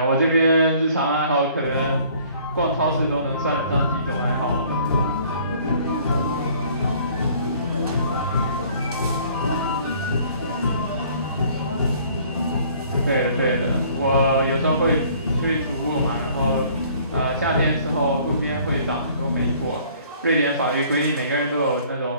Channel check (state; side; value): inverted; both; correlation -0.56